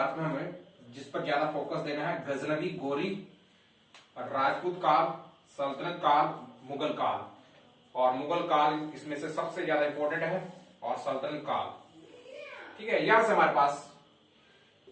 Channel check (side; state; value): both; identical; correlation 1.00